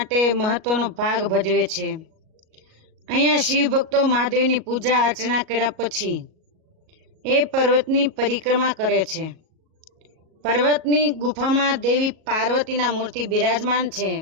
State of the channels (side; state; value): left; late; 38 ms